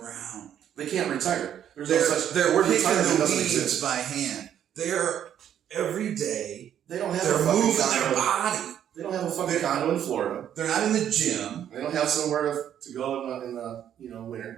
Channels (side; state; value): left; quieter; 10.0 dB